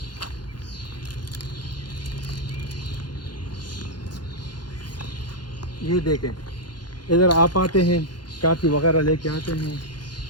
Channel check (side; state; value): right; late; 0.71 ms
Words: یہ دیکھیں, ادھر آپ آتے ہیں, کافی وغیرہ لے کے آتے ہیں,